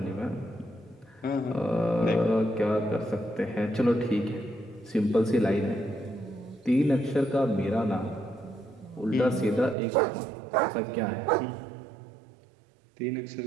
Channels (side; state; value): left; drops out; at 9.8 s